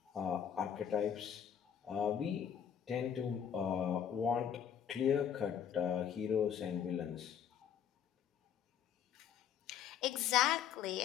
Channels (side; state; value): right; quieter; 8.6 dB